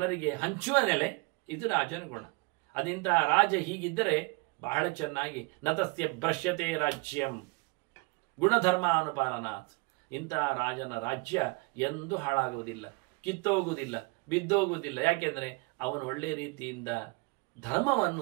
ಹಂಚುವ ನೆಲೆ, ಇದು ರಾಜನ ಗುಣ. ಅದಿಂತಹ ರಾಜ ಹೀಗಿದ್ದರೆ ಬಹಳ ಚೆನ್ನಾಗಿ ನತಸ್ಯ ಭ್ರಶ್ಯತೆ ರಾಜ್ಯಂ ಗುಣಧರ್ಮ ಅನುಪಾಲನಾತ್. ಇಂತಹ ರಾಜನ ರಾಜ್ಯ ಎಂದೂ ಹಾಳಾಗುವುದಿಲ್ಲ, ಕಿತ್ತೋಗುವುದಿಲ್ಲ, ಬಿದ್ದೋಗುವುದಿಲ್ಲ. ಯಾಕೆಂದರೆ ಅವನು ಒಳ್ಳೆ ರೀತಿಯಿಂದ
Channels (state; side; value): quieter; left; 27.5 dB